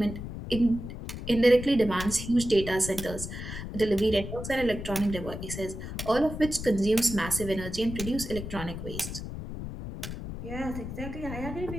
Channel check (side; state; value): left; noise; rumble, 8 dB below the sound